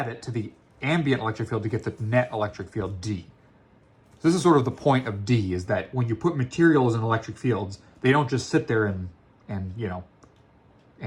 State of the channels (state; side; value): identical; both; correlation 1.00